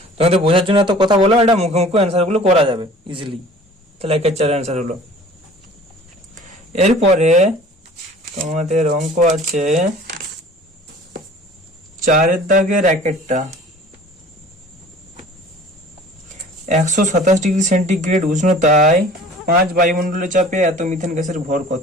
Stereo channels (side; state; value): both; normal; correlation 0.47